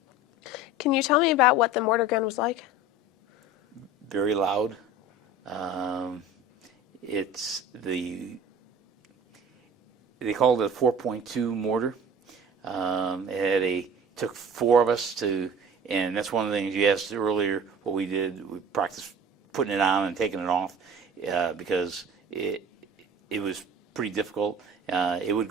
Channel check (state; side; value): normal; both; correlation 0.40